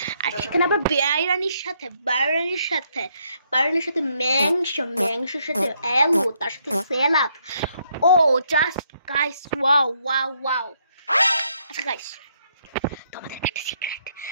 আর সেখানে আবার বাইরানির সাথে মাংসের সাথে আলু, তার সাথে স্যালাড। ও জাস্ট গাইস, ওয়াও। আচ্ছা গাইস, তোমাদের একটা সিক্রেট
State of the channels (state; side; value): inverted; both; correlation -0.73